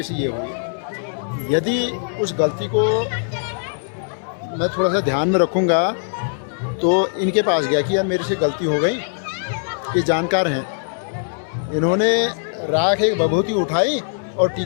से ये हुई, यदि उस गलती को मैं थोड़ा सा ध्यान में रखूँगा, तो इनके पास गया कि यार मेरे से गलती हो गई, ये जानकार है, इन्होंने राख एक विभूति उठाई और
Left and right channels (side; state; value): right; silent; digital silence